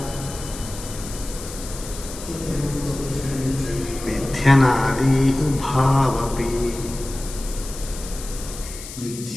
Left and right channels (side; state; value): left; noise; hiss, 12 dB below the sound